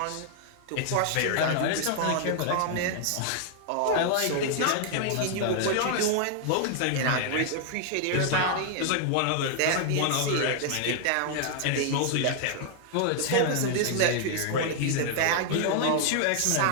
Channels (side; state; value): both; different; correlation 0.00